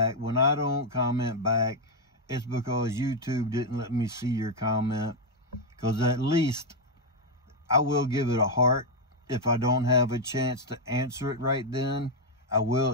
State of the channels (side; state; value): both; normal; correlation 0.01